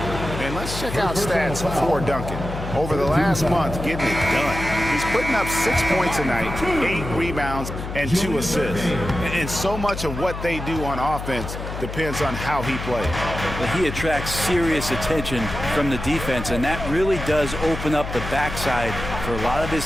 And let's Let's check out stats for Duncan. Over the last month, getting it done. He's putting up 6 points a night, 8 rebounds, and 2 assists. And so much of what they do on offense depends on how he plays. Well, he attracts serious attention from the defense, and that really does open up the backside for a lot of his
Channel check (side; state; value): left; noise; hum, 8 dB below the sound